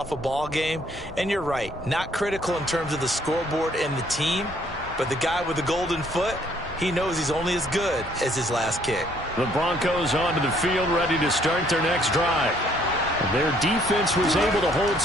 a ball game. And you're right, not critical in terms of the scoreboard and the team. But the guy with the golden foot, he knows he's only as good as his last kick. The Broncos onto the field, ready to start their next drive. Their defense was able to hold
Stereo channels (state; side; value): normal; both; correlation 0.64